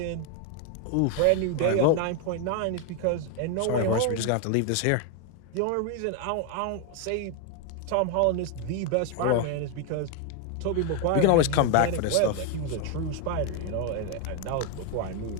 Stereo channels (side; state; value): both; different; correlation 0.01